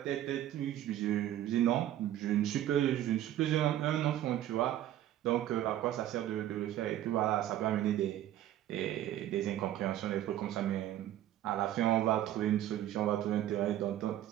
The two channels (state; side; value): quieter; left; 12.5 dB